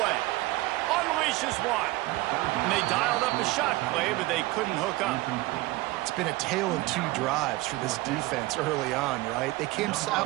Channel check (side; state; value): left; quieter; 19.7 dB